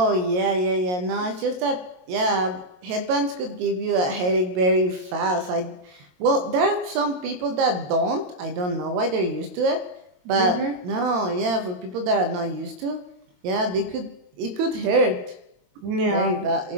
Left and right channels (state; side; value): late; left; 22 ms